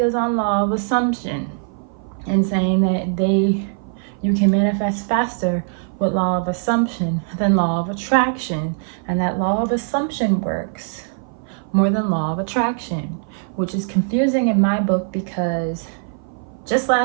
on law of assumption and saying that you can manifest faster with law of assumption than law of attraction, and that law of assumption works more than law of attraction, which is confusing in my book, because just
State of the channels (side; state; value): left; silent; 57 dB below the other